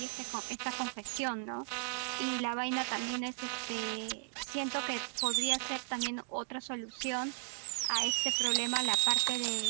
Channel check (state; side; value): silent; left; digital silence